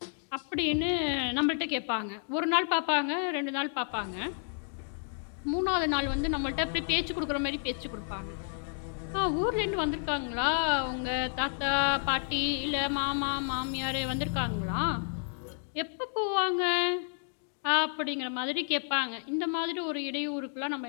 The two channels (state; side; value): silent; right; digital silence